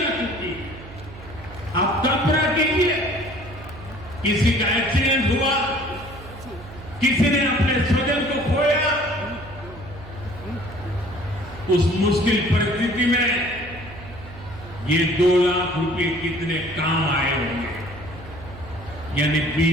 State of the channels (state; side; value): noise; right; hum, 16 dB below the sound